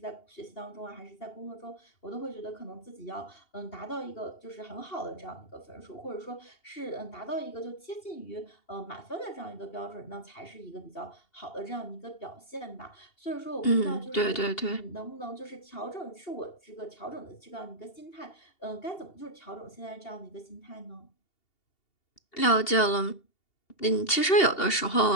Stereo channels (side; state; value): right; late; 2.8 ms